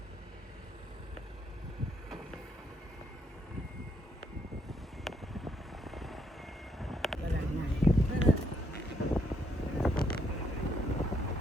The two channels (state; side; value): normal; both; correlation 0.73